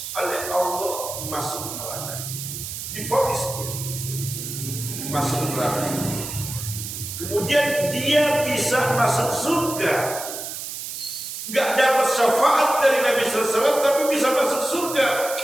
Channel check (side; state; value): right; noise; hiss, 7 dB below the sound